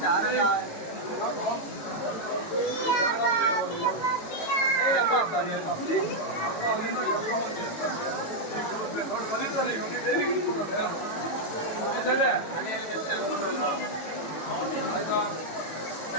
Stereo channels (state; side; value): late; right; 18 ms